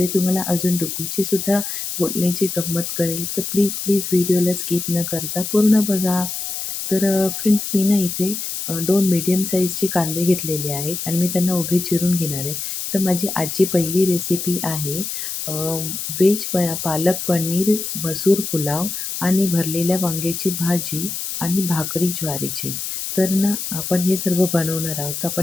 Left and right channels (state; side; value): noise; left; hiss, 5 dB below the sound